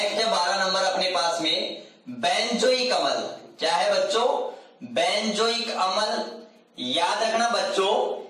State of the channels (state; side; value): identical; both; correlation 1.00